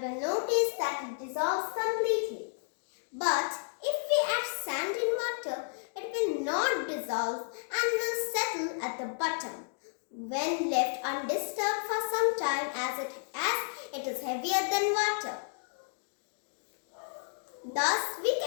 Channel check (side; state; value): right; silent; digital silence